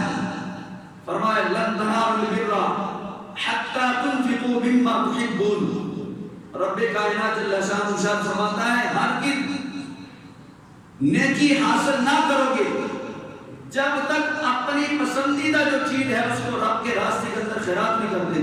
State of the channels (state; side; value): identical; both; correlation 1.00